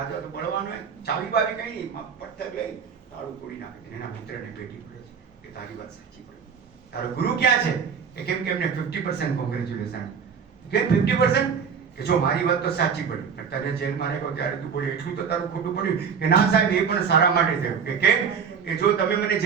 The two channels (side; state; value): left; quieter; 6.6 dB